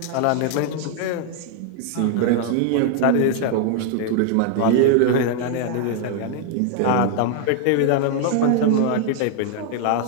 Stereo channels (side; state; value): both; different; correlation 0.00